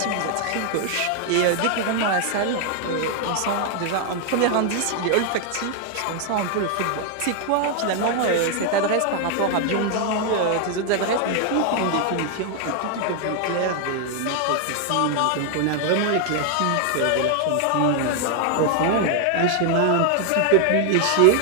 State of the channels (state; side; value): different; both; correlation 0.00